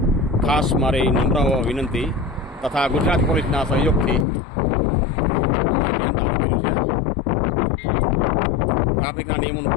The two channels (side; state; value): right; drops out; at 4.2 s